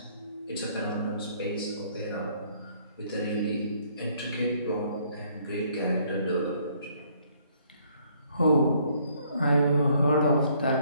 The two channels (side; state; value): both; inverted; correlation -0.65